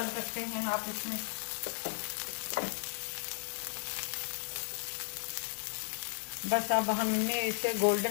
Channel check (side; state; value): right; silent; digital silence